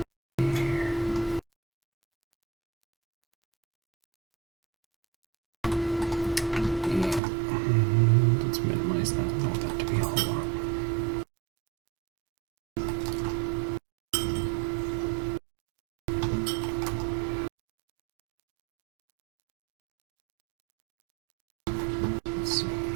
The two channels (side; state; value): left; drops out; at 7.2 s